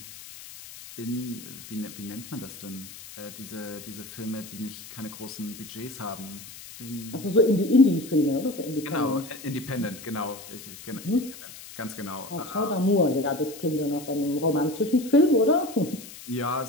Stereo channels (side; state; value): left; noise; hiss, 15 dB below the sound